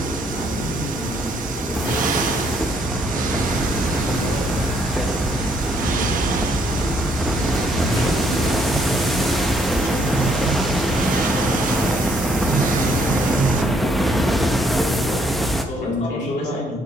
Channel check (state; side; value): normal; both; correlation 0.69